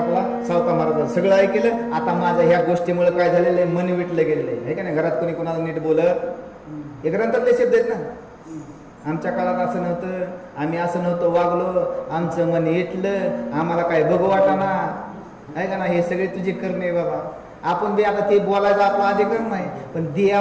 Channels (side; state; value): both; identical; correlation 1.00